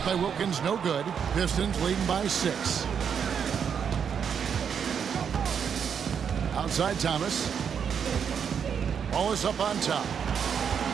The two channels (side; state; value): left; quieter; 7.4 dB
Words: by Wilkins no good. Pistons leading by 6. Outside Thomas. Wallace up on top.